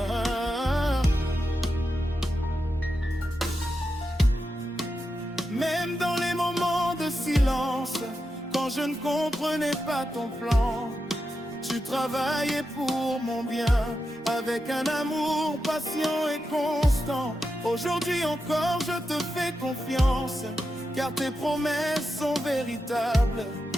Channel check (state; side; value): normal; both; correlation 0.88